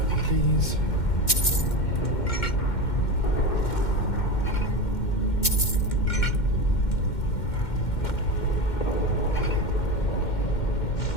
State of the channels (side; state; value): right; late; 2.1 ms